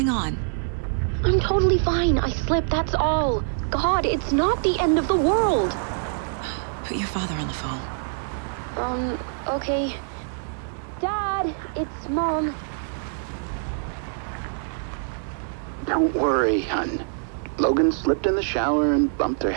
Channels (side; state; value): left; silent; digital silence